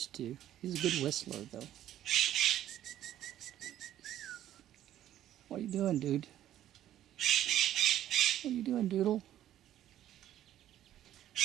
to. He's a good whistler, though. What are you doing, dude? What are you doing, Doodle?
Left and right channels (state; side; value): quieter; left; 12.2 dB